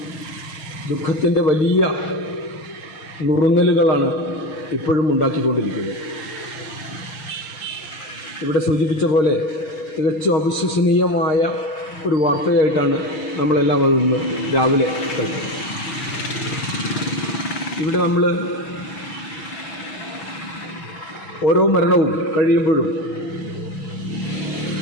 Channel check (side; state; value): right; late; 6.4 ms